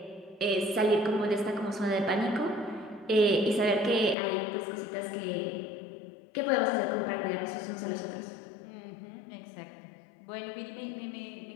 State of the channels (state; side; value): drops out; right; at 4.2 s